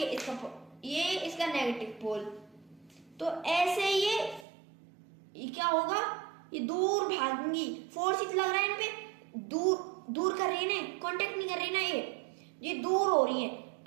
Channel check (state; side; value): drops out; left; at 4.5 s